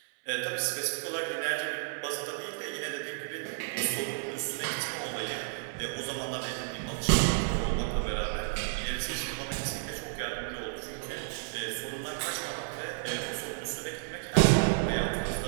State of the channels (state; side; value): silent; left; 57 dB below the other